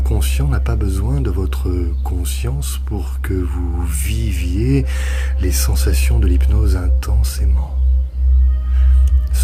n'a pas besoin de votre conscience pour que vous viviez les sensations de l'hypnose intensément.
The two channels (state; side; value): identical; both; correlation 1.00